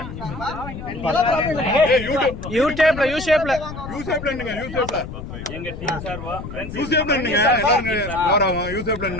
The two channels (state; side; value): noise; left; rumble, 10 dB below the sound